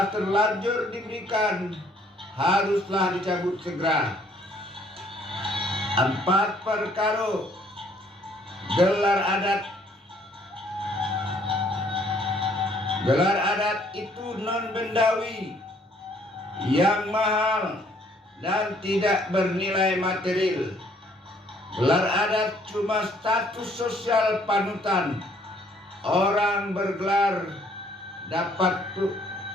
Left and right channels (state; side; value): normal; both; correlation 0.63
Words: terlanjur diberikan haruslah dicabut segera. 4 perkara gelar adat. Gelar adat itu non bendawi, yang mahal dan tidak bernilai material. Gelar adat cuma status sosial panutan. Orang bergelar dapat